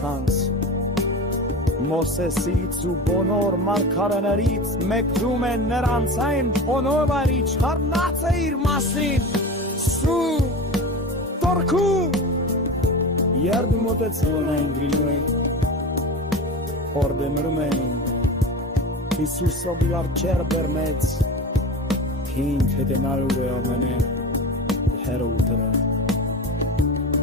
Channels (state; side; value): normal; both; correlation 0.29